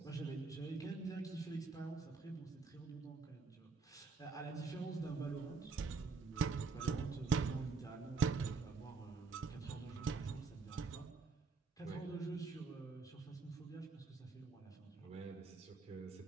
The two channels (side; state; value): left; quieter; 4.5 dB